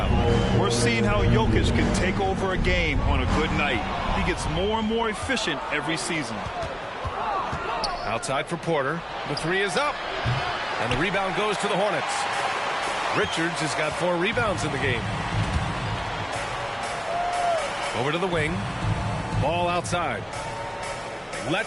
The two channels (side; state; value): both; identical; correlation 1.00